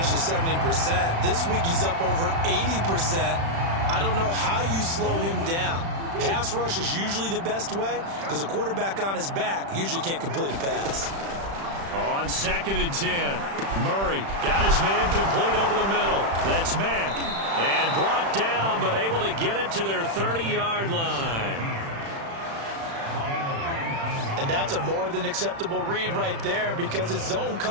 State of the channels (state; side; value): late; left; 36 ms